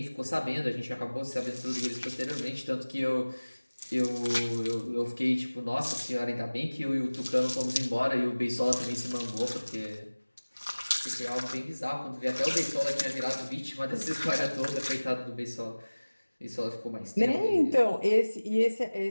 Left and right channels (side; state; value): both; inverted; correlation -1.00